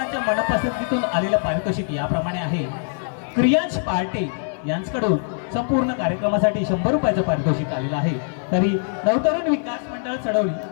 मनपसंतीतून आलेलं पारितोषिक याप्रमाणे आहे. क्रियांश पहाटे यांच्याकडून संपूर्ण कार्यक्रमासाठी 100 रुपयाचं पारितोषिक आलेलं आहे. तरी नवतरुण विकास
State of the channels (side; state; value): right; silent; digital silence